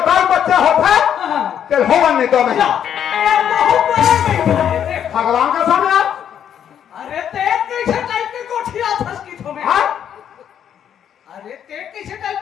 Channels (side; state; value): right; quieter; 9.2 dB